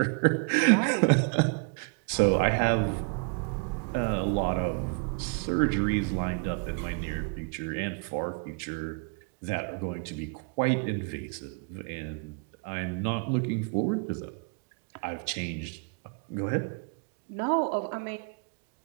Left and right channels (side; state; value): left; quieter; 33.6 dB